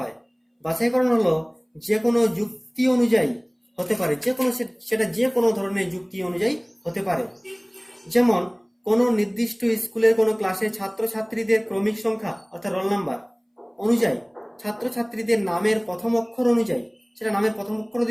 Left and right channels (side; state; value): both; identical; correlation 1.00